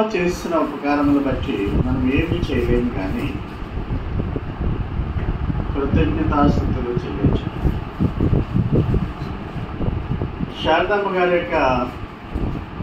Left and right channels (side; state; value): both; identical; correlation 1.00